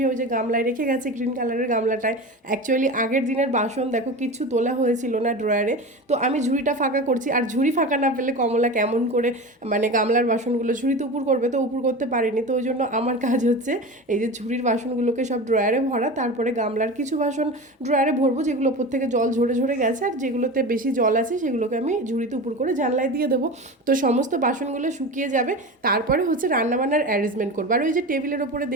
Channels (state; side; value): normal; both; correlation 0.29